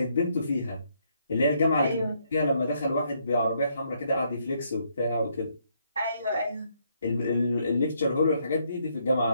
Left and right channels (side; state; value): both; inverted; correlation -0.73